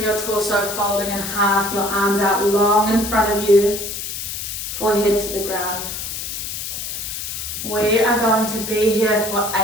your torso folding in half, your arms out long in front of you, forehead to the ground. We are going to be here for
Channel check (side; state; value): left; noise; hiss, 6 dB below the sound